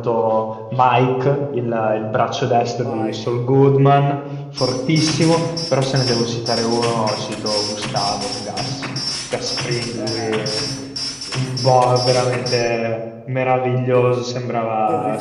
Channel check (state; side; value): identical; both; correlation 1.00